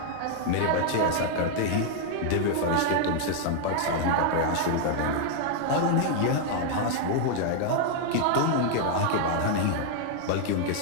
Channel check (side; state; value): both; different; correlation -0.01